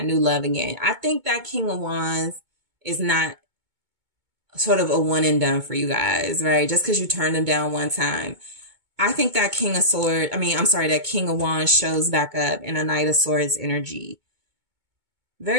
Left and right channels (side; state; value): left; late; 2.2 ms